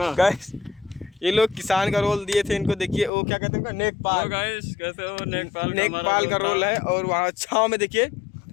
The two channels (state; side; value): drops out; right; at 3.1 s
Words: गाइस ये लोग किसान का रोल दिए थे इनको। देखिए वो क्या कहते हैं नेकपाल। गाइस कैसे हो? नेकपाल का रोल है। और वहाँ छाँव में देखिए